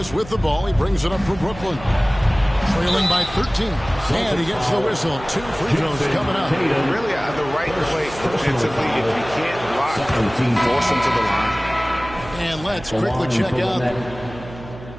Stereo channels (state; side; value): noise; right; hum, 15 dB below the sound